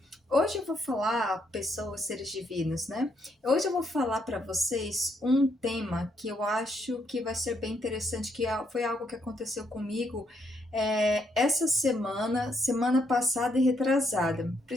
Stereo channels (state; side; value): normal; both; correlation 0.75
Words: hoje eu vou falar, pessoas, seres divinos, né? Hoje eu vou falar para vocês um tema que eu acho que vai ser bem interessante, que foi algo que aconteceu comigo essa semana passada e retrasada.